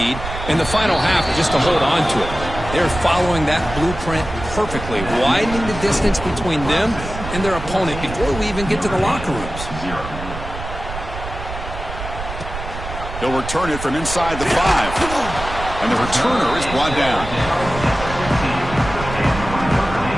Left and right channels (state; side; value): noise; right; rumble, 9 dB below the sound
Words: and the final half just to hold on to it. They're following that blueprint perfectly, widening the distance between them and their opponent before we even get to the locker rooms. They'll return it from inside the 5. And the returner is brought down.